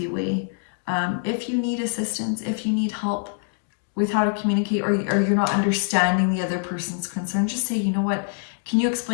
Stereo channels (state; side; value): silent; right; 62 dB below the other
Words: way. If you need assistance, if you need help with how to communicate, or you're not understanding the other person's concern, just say, you know what, can you